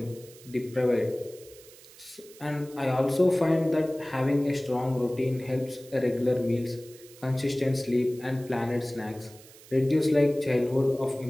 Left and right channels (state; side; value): noise; right; hiss, 22 dB below the sound